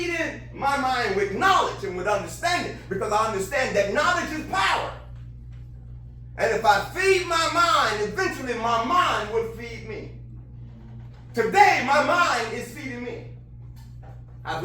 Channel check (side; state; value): both; identical; correlation 1.00